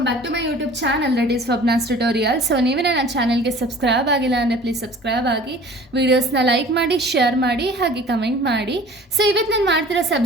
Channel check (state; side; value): normal; both; correlation 0.46